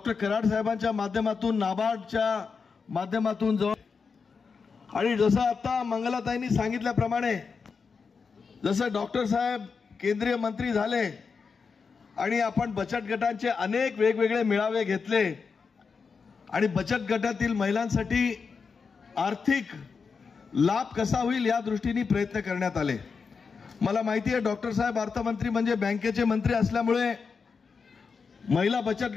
कराड साहेबांच्या माध्यमातून, नाबार्डच्या माध्यमातून आणि जसं आता मंगलाताईंनी सांगितल्याप्रमाणे जसं डॉक्टर साहेब केंद्रीय मंत्री झाले आणि आपण बचत गटांचे अनेक वेगवेगळे मेळावे घेतले आणि बचत गटातील महिलांसाठी आर्थिक लाभ कसा होईल या दृष्टीने प्रयत्न करण्यात आले. मला माहिती आहे डॉक्टर साहेब अर्थमंत्री म्हणजे बँकेचे मंत्री असल्यामुळे महिला बचत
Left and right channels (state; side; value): quieter; right; 5.3 dB